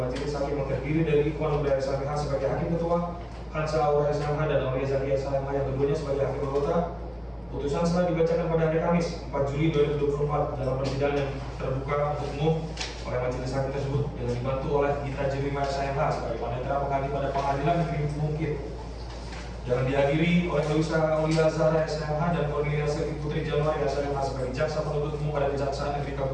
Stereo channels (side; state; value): both; identical; correlation 1.00